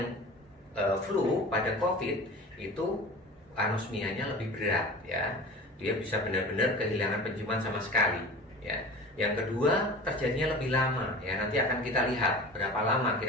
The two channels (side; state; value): both; normal; correlation 0.37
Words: flu, pada COVID itu anosmianya lebih berat ya. Dia bisa benar-benar kehilangan penciuman sama sekali ya. Yang kedua, terjadinya lebih lama ya. Nanti akan kita lihat berapa lama